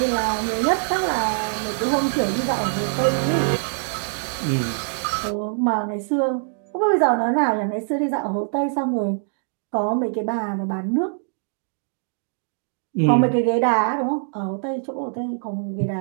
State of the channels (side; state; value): left; silent; digital silence